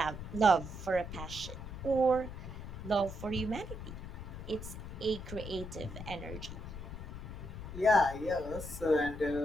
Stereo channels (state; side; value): noise; left; rumble, 9 dB below the sound